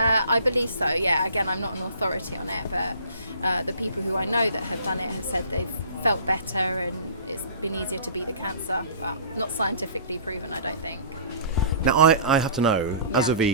believe so, yeah. Again, I'm not an authority on it, but the people who I know that have done it have said they've felt better and it's been easier to beat the cancer, but not scientifically proven, I don't think. Now, I have to know, as Yeah. a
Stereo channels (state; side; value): inverted; both; correlation -0.46